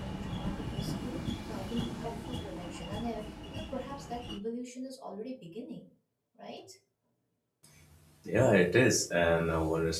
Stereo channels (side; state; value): both; identical; correlation 1.00